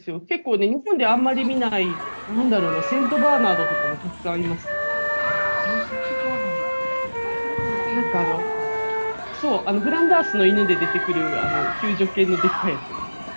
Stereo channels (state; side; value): inverted; both; correlation -1.00